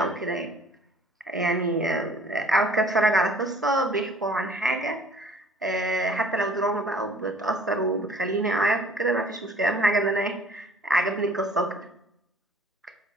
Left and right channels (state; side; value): normal; both; correlation 0.53